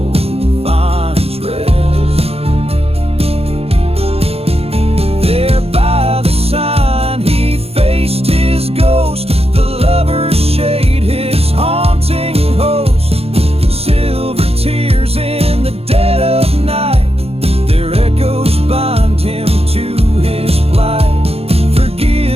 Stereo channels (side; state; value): left; late; 0.29 ms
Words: finds rest. There by the sign he faced his ghost, the lover's shade, his haunting host. Silver tears in the dead of night, their echoes bind him to his plight.